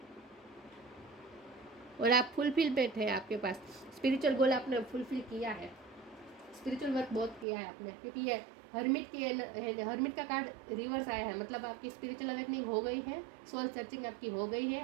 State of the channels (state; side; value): drops out; left; at 7.5 s